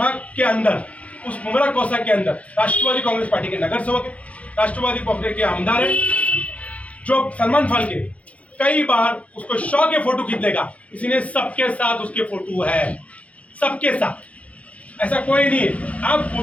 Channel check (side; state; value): right; late; 0.066 ms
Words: के अंदर, उस मुमरा कोसा के अंदर राष्ट्रवादी कांग्रेस पार्टी के नगर सेवक है, राष्ट्रवादी कांग्रेस के आमदार है, जो सलमान फाके कई बार उसको शौ के फोटो खींच देगा, इसलिए सबके साथ उसके फोटो है, सबके साथ, ऐसा कोई नहीं है। आप